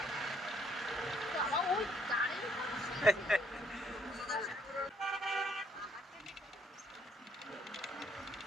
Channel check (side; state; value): both; normal; correlation 0.68